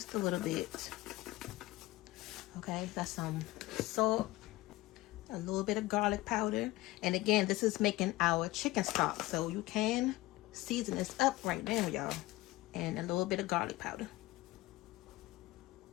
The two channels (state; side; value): quieter; right; 18.8 dB